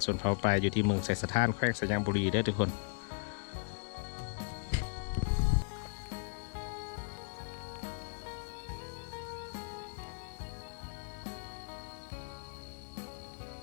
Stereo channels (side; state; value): right; silent; digital silence